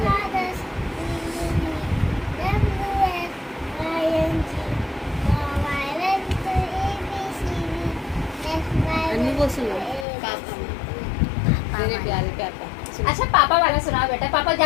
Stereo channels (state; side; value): drops out; right; at 10.1 s